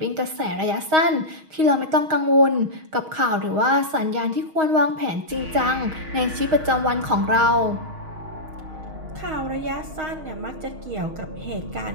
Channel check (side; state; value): left; late; 6.4 ms